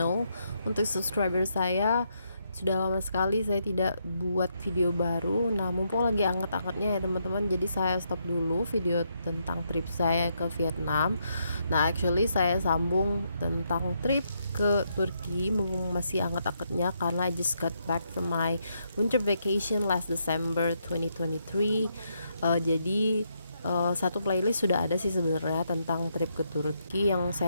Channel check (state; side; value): inverted; both; correlation -0.78